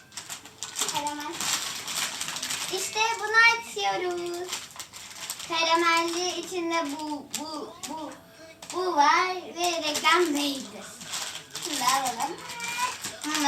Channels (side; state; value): both; identical; correlation 1.00